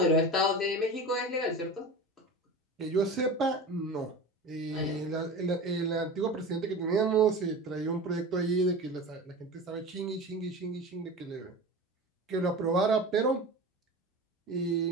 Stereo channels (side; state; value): both; normal; correlation 0.31